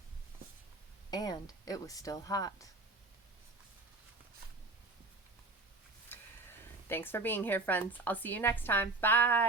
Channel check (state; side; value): quieter; left; 3.2 dB